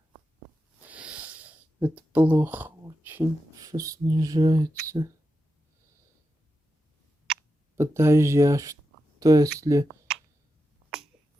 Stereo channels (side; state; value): both; normal; correlation 0.89